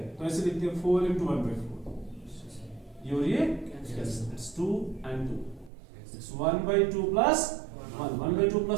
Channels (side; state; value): left; drops out; at 5.7 s